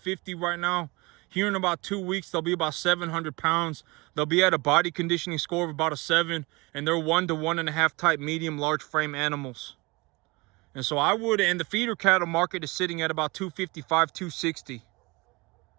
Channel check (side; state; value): left; quieter; 24.8 dB